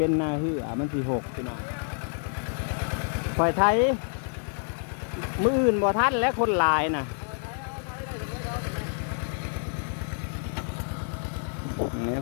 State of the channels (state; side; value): silent; right; 59 dB below the other